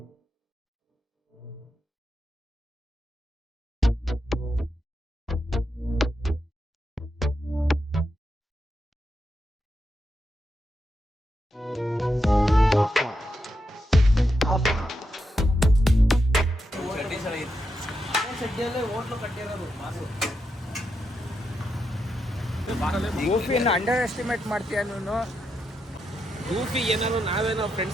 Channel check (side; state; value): both; normal; correlation 0.85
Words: ಗೂಫಿಯನ್ನು ಅಂಡರ್ ಎಸ್ಟಿಮೇಟ್ ಮಾಡ್ತೀಯ ನೀನು? ಊಫಿ ಏನಾದ್ರು ನಾವೇನೋ ಫ್ರೆಂಡ್